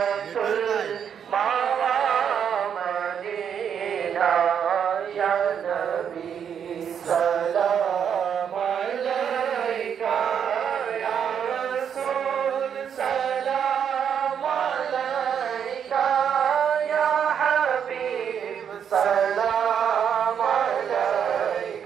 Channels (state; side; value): quieter; left; 8.0 dB